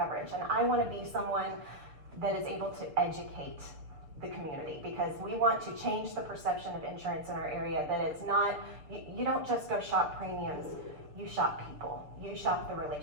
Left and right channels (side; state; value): left; late; 6.7 ms